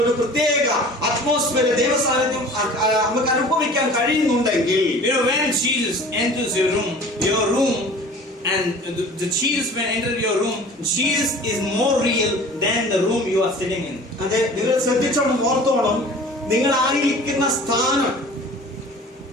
ഒരു പ്രത്യേക അറ്റ്മോസ്ഫിയർ ദൈവ സാന്നിധ്യം നമുക്ക് അനുഭവിക്കാൻ കഴിയുന്നുണ്ടെങ്കിൽ, when Jesus enters your room and the Jesus when entered your room, Jesus is more real than the room you are sitting in. അതെ, നിങ്ങൾ ശ്രദ്ധിച്ചോണം, ഓർത്തോണം, നിങ്ങൾ ആയിരിക്കുന്ന സ്ഥാനം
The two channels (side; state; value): both; normal; correlation 0.44